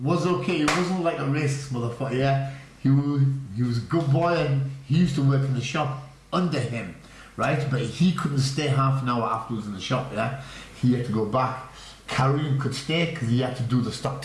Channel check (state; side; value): identical; both; correlation 1.00